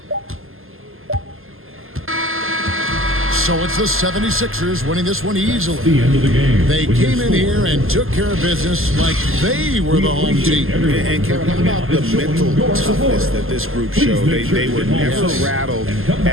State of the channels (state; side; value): late; left; 0.61 ms